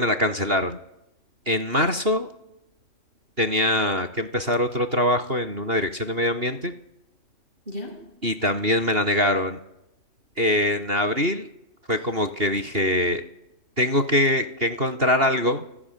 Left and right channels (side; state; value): left; late; 2.8 ms